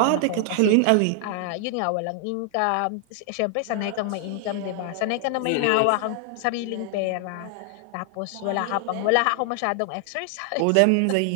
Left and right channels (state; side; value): different; both; correlation 0.00